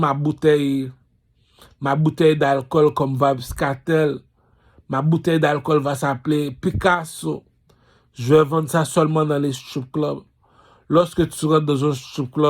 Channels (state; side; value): identical; both; correlation 1.00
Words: bouteille d'alcool comme Vabscatel. Ma bouteille d'alcool va s'appeler Picasso. Je vais vendre ça seulement dans les strip clubs. Lorsque tu rentres dans un strip